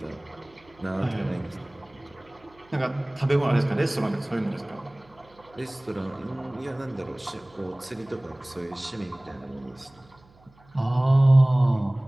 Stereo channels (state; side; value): noise; right; hum, 29 dB below the sound